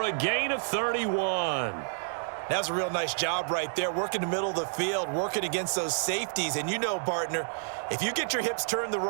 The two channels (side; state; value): left; silent; digital silence